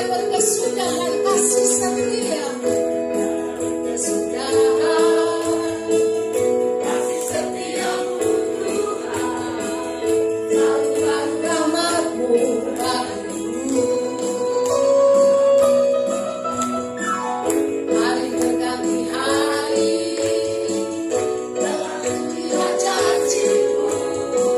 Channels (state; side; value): identical; both; correlation 1.00